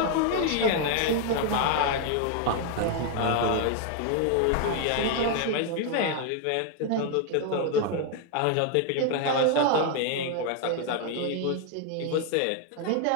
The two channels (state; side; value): different; both; correlation 0.00